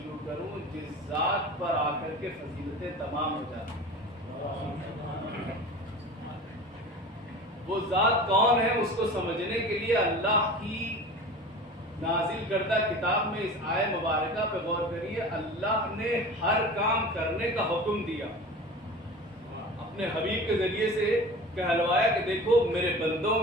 کروں جس ذات پر آ کر کے فضیلتیں تمام ہو جاتی ہیں. وہ ذات کون ہے اس کو سمجھنے کے لیے اللہ کی نازل کردہ کتاب میں اس آیہ مبارکہ پہ غور کریے. اللہ نے ہر کام کرنے کا حکم دیا، اپنے حبیب کے ذریعے سے کہلوایا کہ دیکھو میرے بندوں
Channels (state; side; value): normal; both; correlation 0.36